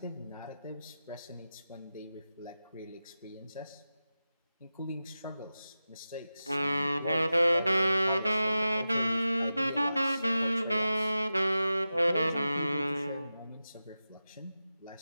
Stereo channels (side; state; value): both; inverted; correlation -0.93